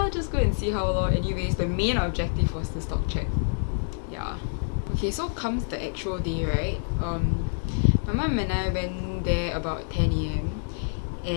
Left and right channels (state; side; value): silent; right; digital silence